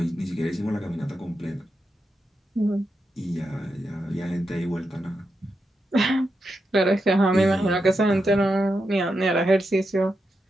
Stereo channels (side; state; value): both; normal; correlation 0.86